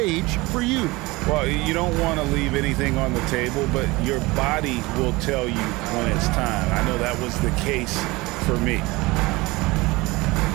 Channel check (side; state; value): left; quieter; 22.2 dB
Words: for you? Well, you don't want to leave anything on the table, but your body will tell you when it's time. I know that was the case for me.